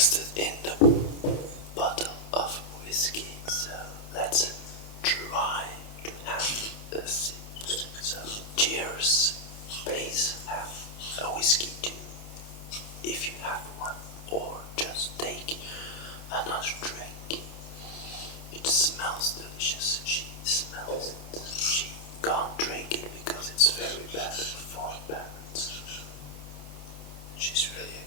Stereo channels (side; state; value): right; late; 28 ms